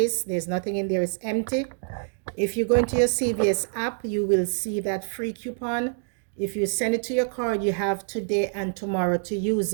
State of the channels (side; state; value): left; silent; digital silence